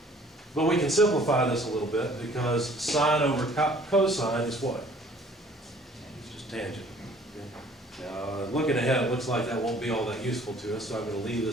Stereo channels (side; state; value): both; normal; correlation 0.55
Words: But we can simplify this a little bit because sine over cosine is what? It's just tangent. Okay. Now, looking ahead, it looks like that won't be all that useful to us, so I'm going to leave